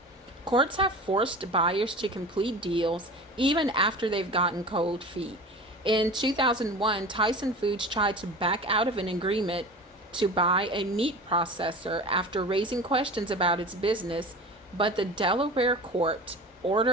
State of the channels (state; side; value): normal; both; correlation 0.35